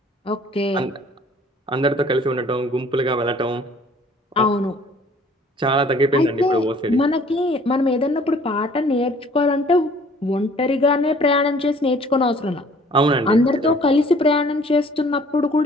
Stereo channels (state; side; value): normal; both; correlation 0.54